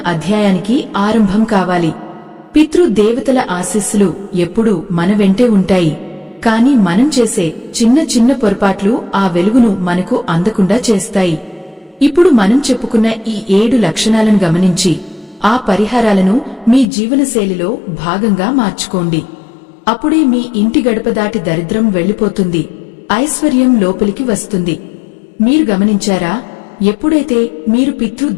అధ్యాయానికి ఆరంభం కావాలి. పితృదేవతల ఆశీస్సులు ఎప్పుడూ మన వెంటే ఉంటాయి. కాని మనం చేసే చిన్న చిన్న పొరపాట్లు ఆ వెలుగును మనకు అందకుండా చేస్తాయి. ఇప్పుడు మనం చెప్పుకున్న ఈ 7 లక్షణాలను గమనించి ఆ పరిహారాలను మీ జీవనశైలిలో భాగంగా మార్చుకోండి. అప్పుడే మీ ఇంటి గడప దాటి దరిద్రం వెళ్లిపోతుంది, ఐశ్వర్యం లోపలికి వస్తుంది. మీరు గమనించారా, ఎప్పుడైతే మీరు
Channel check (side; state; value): right; drops out; at 16.9 s